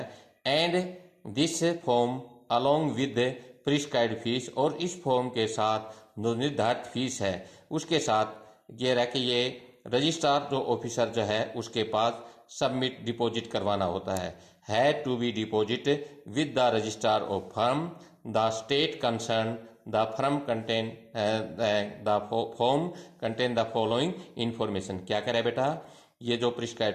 and this form along with prescribed fees, और इस फॉर्म के साथ जो निर्धारित फीस है उसके साथ ये रह कि ये रजिस्ट्रार जो ऑफिसर जो है उसके पास सबमिट डिपॉजिट करवाना होता है to be deposit with the registrar of firm the state concern the firm contain the form contain the following information. क्या करे बेटा, ये जो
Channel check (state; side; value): identical; both; correlation 1.00